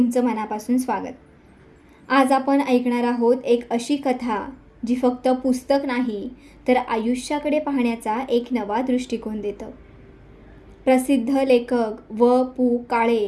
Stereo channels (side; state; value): both; identical; correlation 1.00